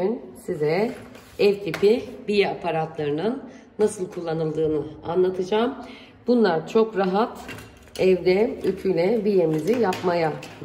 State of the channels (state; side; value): identical; both; correlation 1.00